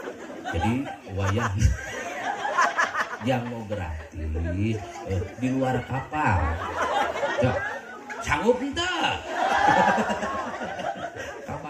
Jadi wayah yang mau gratis di luar kapal. Cok, sanggup henteu?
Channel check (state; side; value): identical; both; correlation 1.00